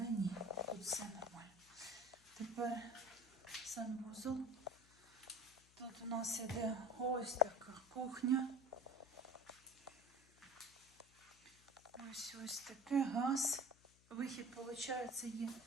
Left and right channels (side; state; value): left; noise; hum, 27 dB below the sound